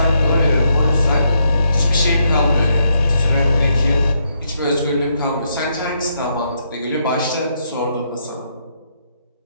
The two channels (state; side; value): inverted; both; correlation -0.77